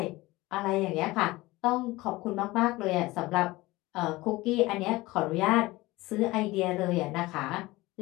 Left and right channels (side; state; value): right; quieter; 19.9 dB